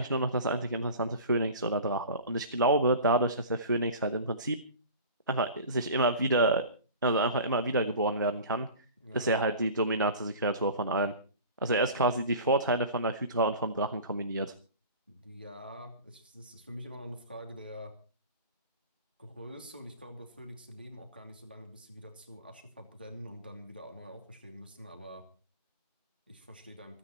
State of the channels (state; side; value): inverted; both; correlation -0.38